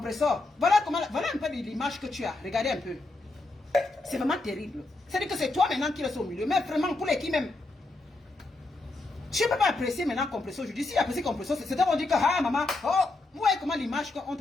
Voilà un peu l'image que tu as. Regardez un peu. C'est vraiment terrible. C'est-à-dire que c'est toi maintenant qui restes au milieu. Mais vraiment, pour les qui même. Tu ne peux pas apprécier maintenant Compressor. Je dis, si apprécier Compressor, c'est à dire que, ah, maman, oh, vous voyez comment l'image qu'on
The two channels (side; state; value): right; quieter; 3.1 dB